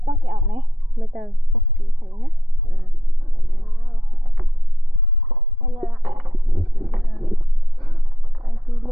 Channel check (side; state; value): both; normal; correlation 0.80